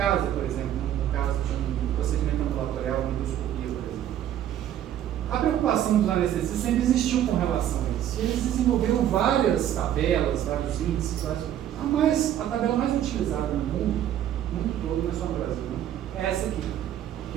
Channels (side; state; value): left; quieter; 11.1 dB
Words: por exemplo, no caso de um procedimento ambulatorial, uma endoscopia, por exemplo. A preocupação dos anestesistas sempre existiu com relação a isso. Eles desenvolveram várias tabelas, vários índices, a tabela mais utilizada no mundo todo, não é só no Brasil, é essa aqui,